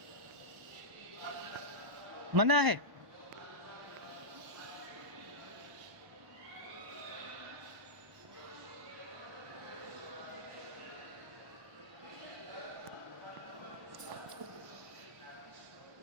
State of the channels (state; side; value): late; left; 1.1 ms